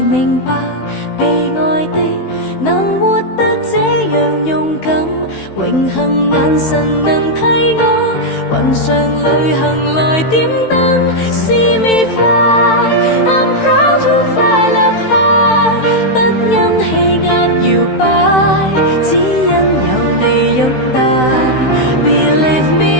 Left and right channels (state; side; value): late; right; 16 ms